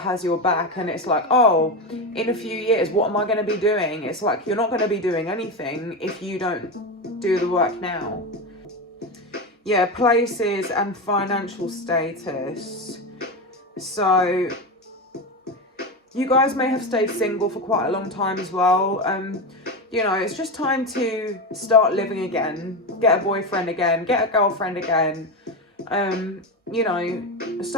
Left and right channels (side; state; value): both; normal; correlation 0.17